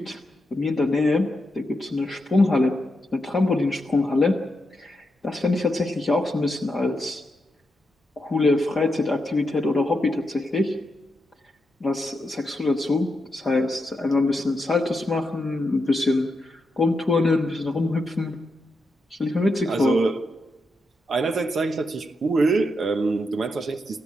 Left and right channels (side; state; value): both; normal; correlation 0.85